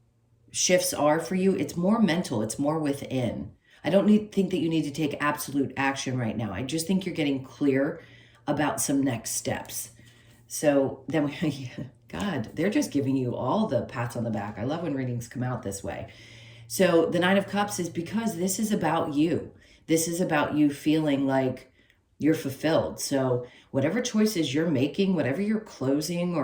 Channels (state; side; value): identical; both; correlation 1.00